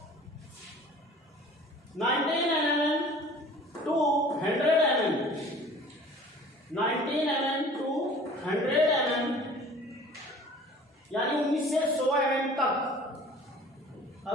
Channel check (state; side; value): normal; both; correlation 0.46